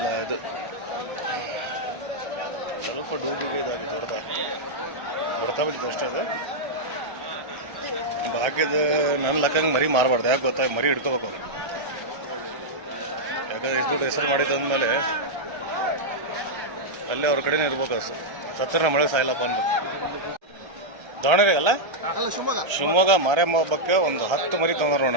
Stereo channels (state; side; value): late; left; 1.3 ms